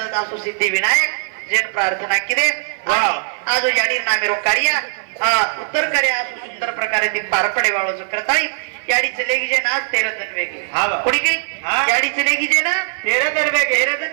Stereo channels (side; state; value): left; silent; 57 dB below the other